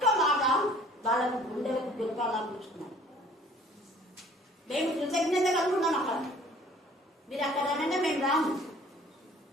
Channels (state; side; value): normal; both; correlation 0.53